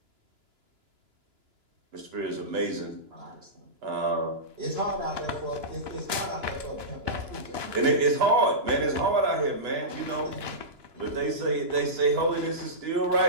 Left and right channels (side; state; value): left; late; 2.9 ms